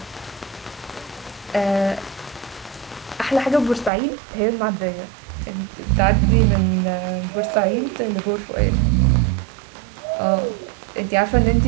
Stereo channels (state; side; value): drops out; left; at 3.9 s